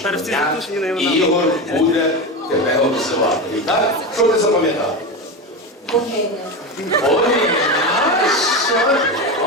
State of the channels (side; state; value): both; normal; correlation 0.20